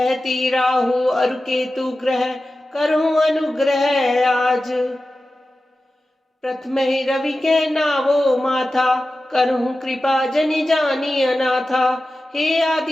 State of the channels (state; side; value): normal; both; correlation 0.94